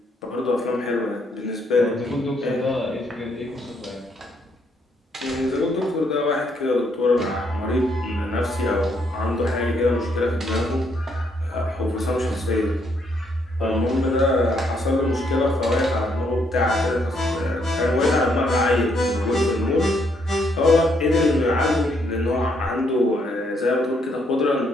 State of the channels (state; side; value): normal; both; correlation 0.72